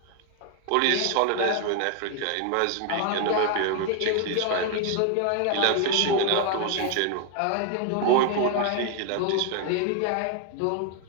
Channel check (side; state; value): both; different; correlation 0.01